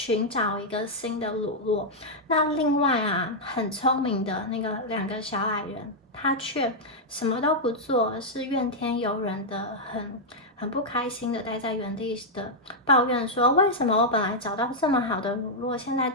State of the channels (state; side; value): normal; both; correlation -0.04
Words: 找一个新的乳酪。那另外啊，很聪明的那个2个小矮人，他却什么都不做，而是怨天尤人的，很不开心的待在原地的抱怨说：为什么我本来找到这么好的乳酪，现在